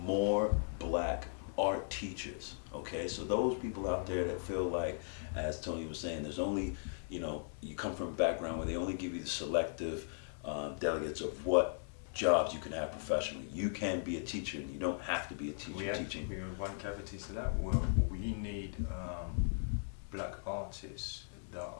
black art teachers, okay? So those people out there that feel like, as Tony was saying, there's only, you come from a background where they only give you the selective delegates of what jobs you can have professionally. You can be a teacher and you don't have to be a teacher teaching. We have one cavity to that. Well, we need black artists that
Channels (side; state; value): right; silent; digital silence